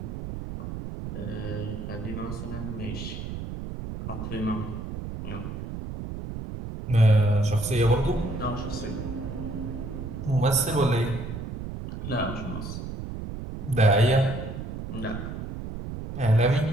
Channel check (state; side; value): noise; right; rumble, 7 dB below the sound